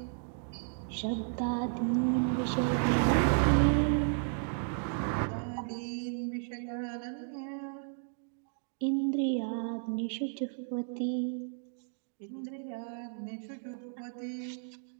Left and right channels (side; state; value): left; silent; digital silence